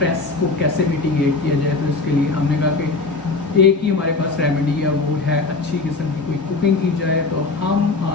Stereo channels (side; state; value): right; quieter; 3.8 dB